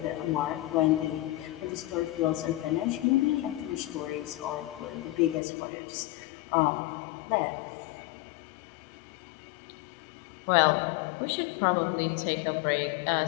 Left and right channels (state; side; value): drops out; right; at 5.4 s